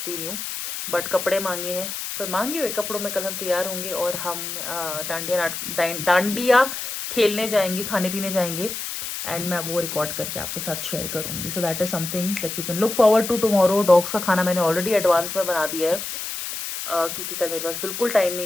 नहीं हूँ, बट कपड़े मांगे हैं, पर मांगे हुए कपड़ों में कल हम तैयार होंगे और हम डांडिया खेलने जाएंगे, खाने पीने जाएंगे, एंड मैं वो रिकॉर्ड करके आपके साथ शेयर करूंगी. So that is something that you can look forward to tomorrow. Dogs का खाना मैंने ऑलरेडी एडवांस में बना दिया है, क्योंकि कल मेरे पास बिल्कुल टाइम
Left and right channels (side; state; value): left; noise; hiss, 6 dB below the sound